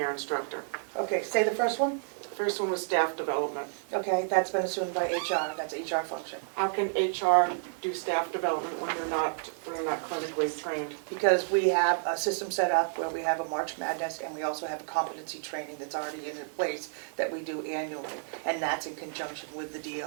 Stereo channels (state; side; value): silent; left; 57 dB below the other